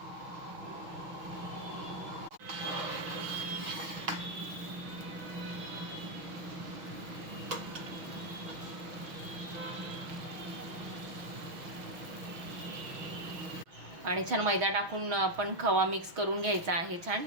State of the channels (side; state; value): left; late; 6.2 ms